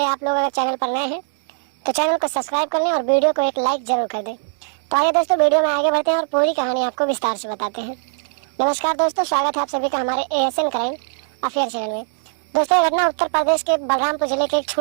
आप लोग अगर चैनल पर नए हैं तो चैनल को सब्सक्राइब कर लें और वीडियो को एक लाइक जरूर कर दें। तो आइए दोस्तों वीडियो में आगे बढ़ते हैं और पूरी कहानी आपको विस्तार से बताते हैं। नमस्कार दोस्तों, स्वागत है आप सभी का हमारे ASN क्राइम अफेयर चैनल में। दोस्तों ये घटना उत्तर प्रदेश के बलरामपुर जिले के एक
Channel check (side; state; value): left; silent; digital silence